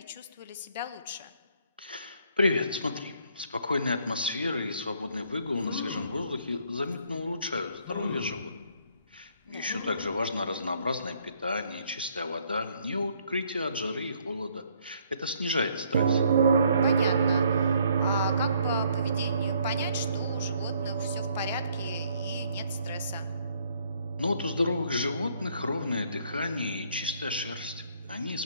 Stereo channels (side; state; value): both; inverted; correlation -0.66